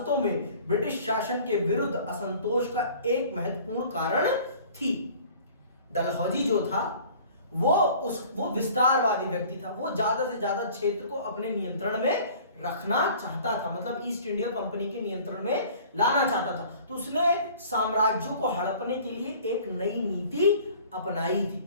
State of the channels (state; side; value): inverted; both; correlation -0.49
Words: में ब्रिटिश शासन के विरुद्ध असंतोष का एक महत्वपूर्ण कारण थी। डलहौजी जो था वो विस्तारवादी व्यक्ति था, वो ज्यादा से ज्यादा क्षेत्र को अपने नियंत्रण में रखना चाहता था, मतलब ईस्ट इंडिया कंपनी के नियंत्रण में लाना चाहता था। तो उसने साम्राज्यों को हड़पने के लिए एक नई नीति अपनाई